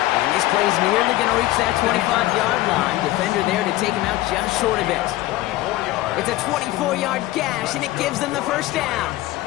this play's nearly going to reach that 25-yard line. Defender there to take him out just short of it. It's a 24-yard gash, and it gives them the first down.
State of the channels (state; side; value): quieter; right; 16.7 dB